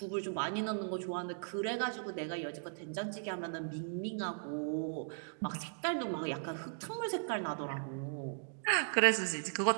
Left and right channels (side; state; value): left; silent; digital silence